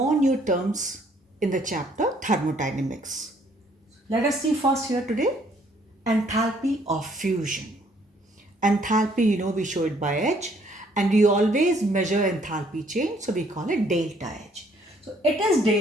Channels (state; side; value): normal; both; correlation 0.64